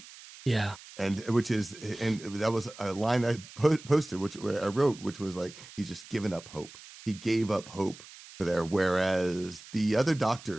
Yeah. And that was a line I posted, which I wrote, which was like, he's just given up hope. He gave up hope for there. Whereas the other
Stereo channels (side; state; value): right; noise; hiss, 18 dB below the sound